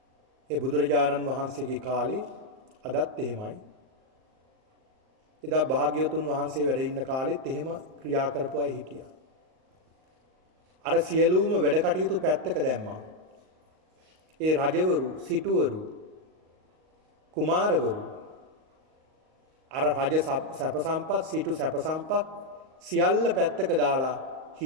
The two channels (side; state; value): left; late; 38 ms